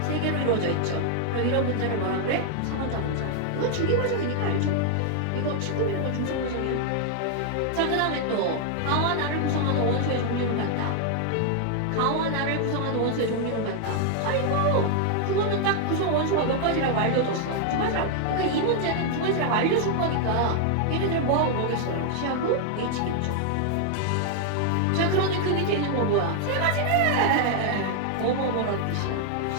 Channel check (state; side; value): different; both; correlation 0.00